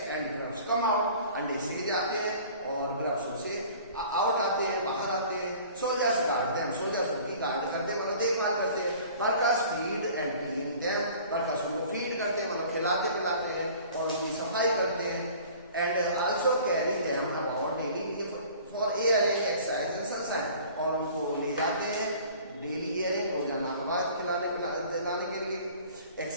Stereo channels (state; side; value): inverted; both; correlation -0.47